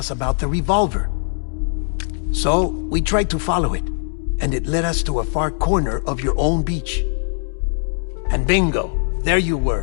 about the revolver. So, we tried to follow it, and it led us to a far corner of your own beach. And bingo, there you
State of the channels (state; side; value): silent; right; digital silence